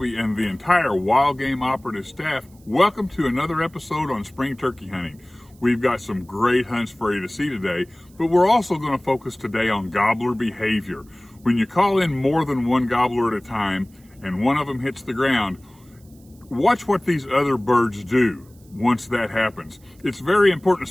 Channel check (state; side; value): noise; right; hiss, 30 dB below the sound